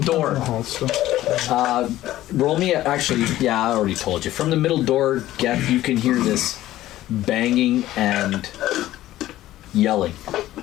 Hall still. Roll me actually, yeah, I already told you. From the middle door, Geth, you can hear this banging and yelling.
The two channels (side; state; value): right; quieter; 14.7 dB